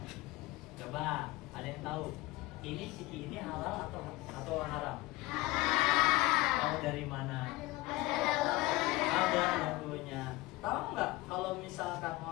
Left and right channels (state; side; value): quieter; right; 20.1 dB